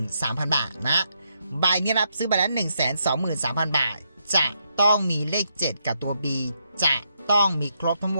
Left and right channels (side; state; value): both; inverted; correlation -0.79